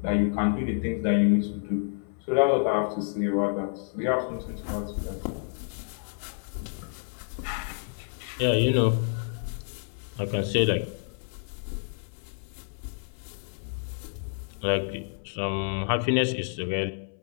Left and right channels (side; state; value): right; silent; 59 dB below the other